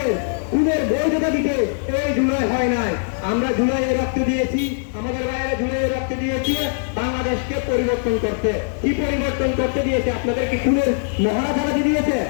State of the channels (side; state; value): right; silent; digital silence